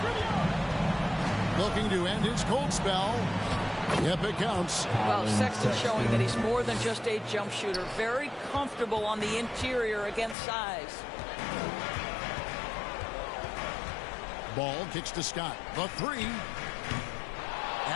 Looking to end his cold spell. Yep, it counts. Well, Sexton showing that he's more than just a jump shooter. Very comfortable on the interior against size. Ball kicks to Scott. The 3.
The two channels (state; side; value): drops out; right; at 10.4 s